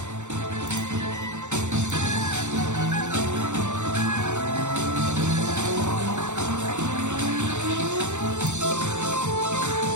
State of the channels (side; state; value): left; late; 0.84 ms